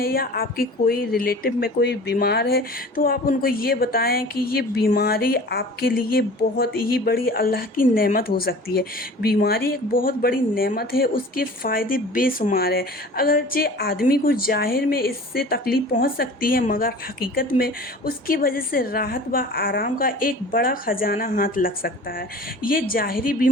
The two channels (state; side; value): normal; both; correlation 0.42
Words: या आपकी कोई रिलेटिव में कोई बीमार है तो आप उनको ये बताएं कि ये बीमारी आपके लिए बहुत ही बड़ी अल्लाह की नेमत हो सकती है। बीमारी एक बहुत बड़ी नेमत है, उसके फ़ायदे बेशुमार है। अगरचे आदमी को ज़ाहिर में इससे तकलीफ़ पहुँच सकती है, मगर हकीकत में उसकी वजह से राहत व आराम का एक बड़ा खजाना हाथ लग सकता है। ये ज़ाहिरी